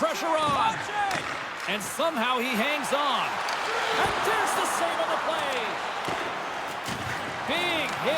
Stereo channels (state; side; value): identical; both; correlation 1.00